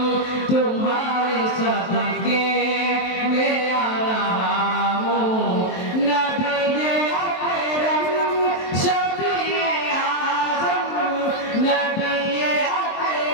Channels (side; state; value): right; late; 23 ms